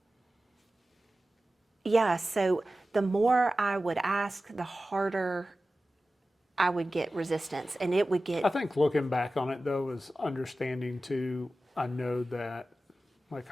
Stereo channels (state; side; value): normal; both; correlation 0.95